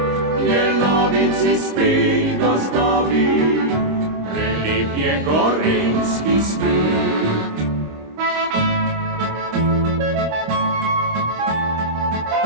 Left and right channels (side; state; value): left; late; 26 ms